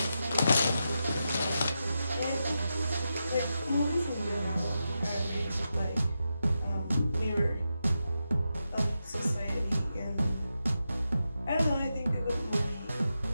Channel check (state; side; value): inverted; both; correlation -0.88